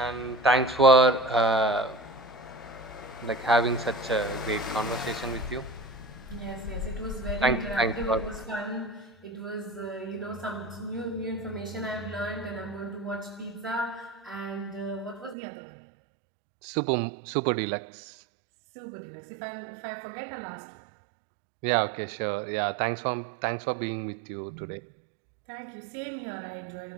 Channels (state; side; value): drops out; left; at 15.4 s